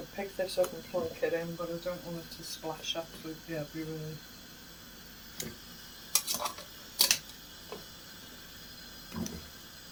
pick this up and plunk it in, but I don't want it to splash absolutely everywhere.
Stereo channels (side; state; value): both; identical; correlation 1.00